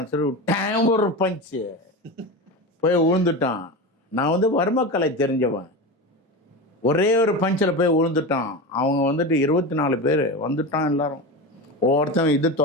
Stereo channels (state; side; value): normal; both; correlation 0.24